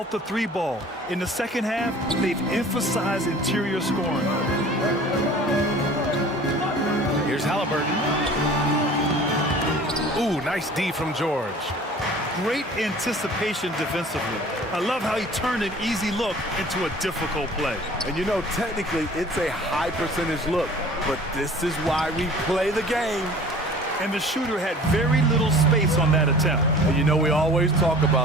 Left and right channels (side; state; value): both; normal; correlation 0.46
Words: the 3 ball. In the second half, they've emphasized interior scoring. Here's Halliburton. Ooh, nice D from George. Great anticipation defensively. I love how he turned an easy look into a difficult play. And you know, technically, it's a high percentage look, but this is why we play the game. And the shooter had very little space on that attempt. And you know, we always talk